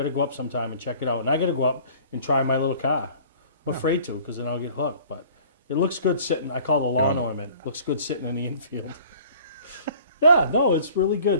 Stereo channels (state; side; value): inverted; both; correlation -0.49